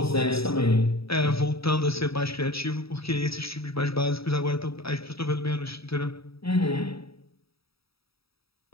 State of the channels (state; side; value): late; right; 0.77 ms